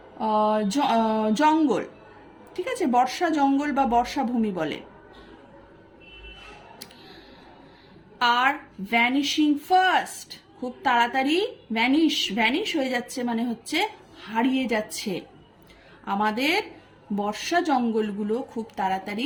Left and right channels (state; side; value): identical; both; correlation 1.00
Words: জঙ্গল, ঠিক আছে? বর্ষা জঙ্গল বা বর্ষাভূমি বলে। আর ভ্যানিশিং ফাস্ট, খুব তাড়াতাড়ি ভ্যানিশ হয়ে যাচ্ছে মানে হচ্ছে হারিয়ে যাচ্ছে। আমাদের বর্ষা জঙ্গলগুলো খুব